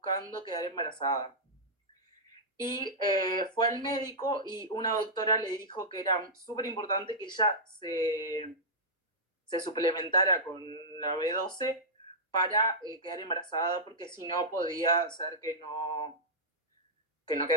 quedar embarazada. Y fue al médico y una doctora le dijo que era súper importante que ella se suplementara con la B12 para quedar embarazada, porque si no podía ser que no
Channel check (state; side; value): normal; both; correlation -0.10